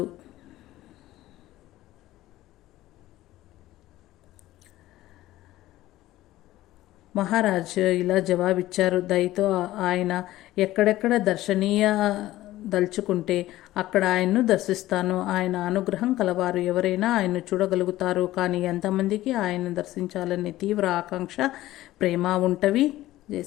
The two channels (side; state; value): right; quieter; 15.7 dB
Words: మహారాజ్ ఇలా జవాబిచ్చారు. దయతో ఆయన ఎక్కడెక్కడ దర్శనీయ దలుచుకుంటే అక్కడ ఆయన్ను దర్శిస్తాను. ఆయన అనుగ్రహం కలవారు ఎవరైనా ఆయన్ను చూడగలుగుతారు. కానీ ఎంతమందికి ఆయన్ను దర్శించాలనే తీవ్ర ఆకాంక్ష, ప్రేమ ఉంటవి? జై